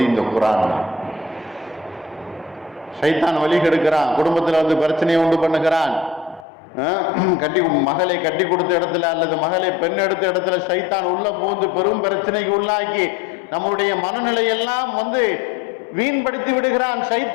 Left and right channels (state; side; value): drops out; right; at 6.5 s